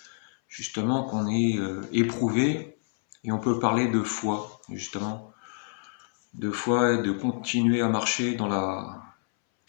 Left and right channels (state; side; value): silent; right; 60 dB below the other